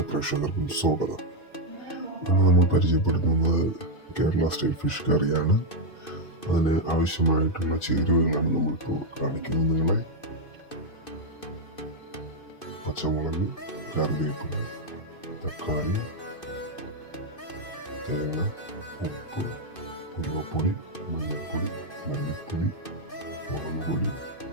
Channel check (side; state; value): right; late; 2.5 ms